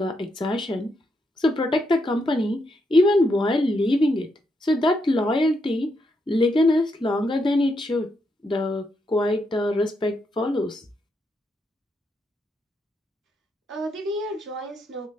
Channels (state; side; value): normal; both; correlation 0.80